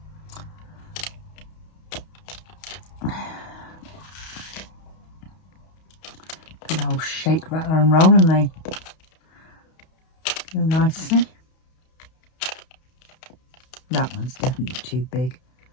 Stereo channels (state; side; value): late; right; 31 ms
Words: Good old shake, rattle and roll, and they go nicely. That one's definitely too big.